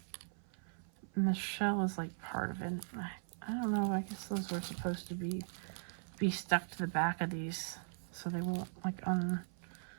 And the shell is like part of it. I don't know, I guess those were supposed to be stuck to the back of these so they won't like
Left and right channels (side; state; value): left; silent; 52 dB below the other